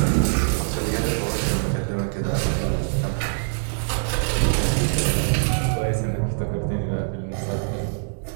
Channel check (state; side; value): silent; left; digital silence